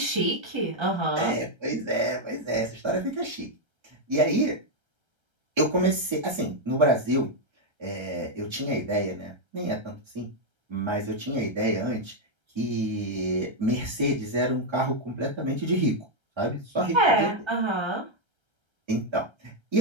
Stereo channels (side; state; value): left; late; 1.3 ms